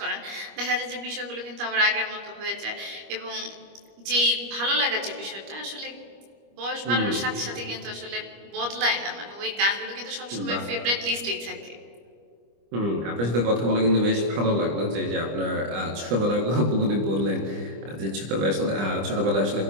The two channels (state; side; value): late; left; 25 ms